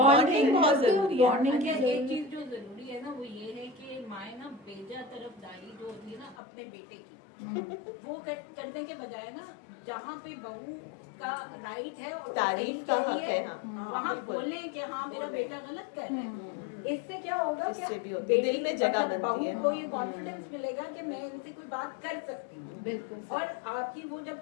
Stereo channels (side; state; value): right; drops out; at 6.4 s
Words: بہت ضروری ہے. ایک چیز جو ضروری ہے نا وہ یہ ہے کہ مائیں نا بیجا طرف داری جو ہوتی ہے نا اپنے بیٹے کی, وہ کرنے کے بجائے نا جہاں پہ بہو کا رائٹ ہے اور تعریف کا حق ہے, وہاں بولیں کہ ہاں میرا بیٹا غلط کر رہا ہے. اس سے کیا ہوگا, اس سے بھی دل میں جگہ بنتی ہے, کو یہ کانفیڈینس ملے گا کہ میں ان سے کوئی بات کر سکتی ہوں. بالکل. اور آپ کی وہ جب